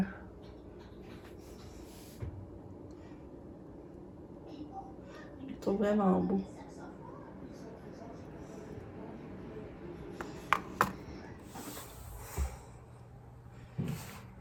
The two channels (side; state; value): both; identical; correlation 1.00